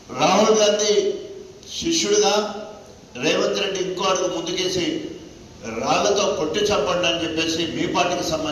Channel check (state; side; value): identical; both; correlation 1.00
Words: రాహుల్ గాంధీ శిష్యుడిగా రేవంత్ రెడ్డి ఇంకో అడుగు ముందుకేసి రాళ్లతో కొట్టి చంపండి అని చెప్పేసి మీ పార్టీకి